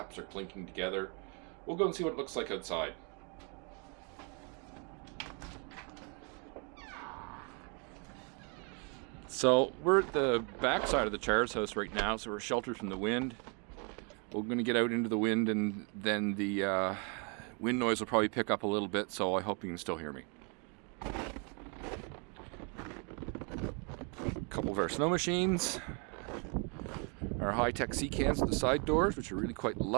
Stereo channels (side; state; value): left; quieter; 35.9 dB